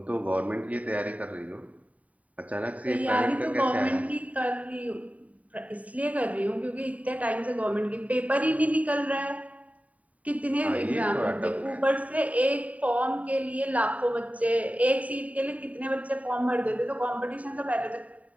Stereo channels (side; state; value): left; late; 0.069 ms